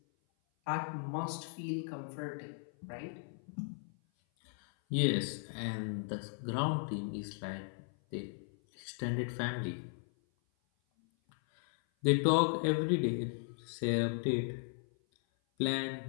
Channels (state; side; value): silent; right; 54 dB below the other